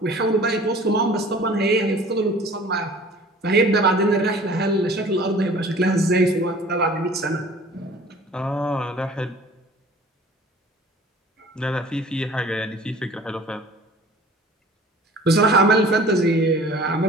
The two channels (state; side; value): normal; both; correlation 0.47